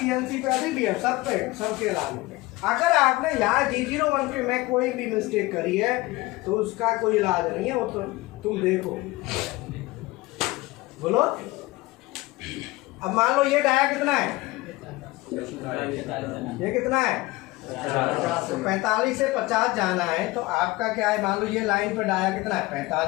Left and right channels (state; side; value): quieter; right; 20.4 dB